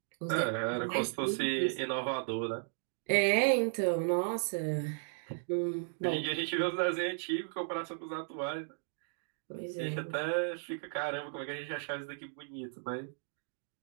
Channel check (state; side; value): silent; left; digital silence